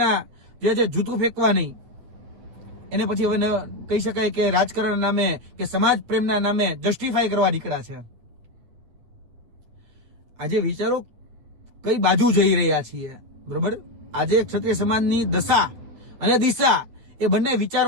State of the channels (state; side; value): late; left; 8.9 ms